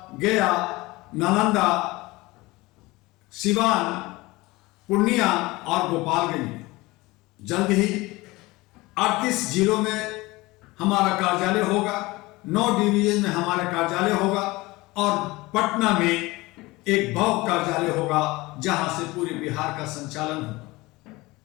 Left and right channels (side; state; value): right; quieter; 21.4 dB